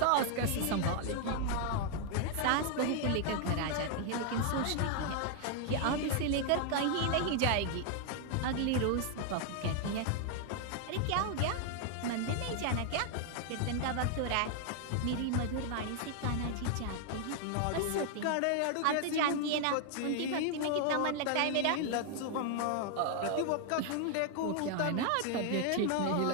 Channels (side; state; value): both; different; correlation 0.00